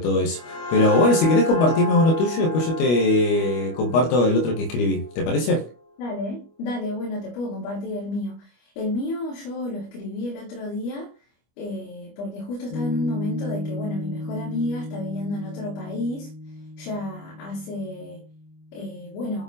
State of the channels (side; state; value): right; late; 25 ms